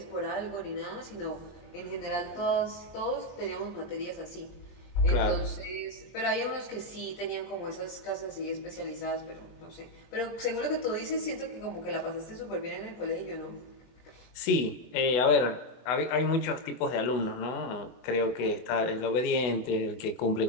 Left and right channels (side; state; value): right; late; 24 ms